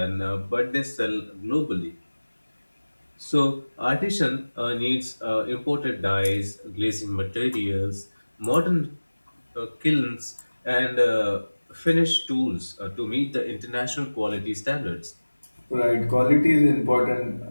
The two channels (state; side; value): inverted; both; correlation -1.00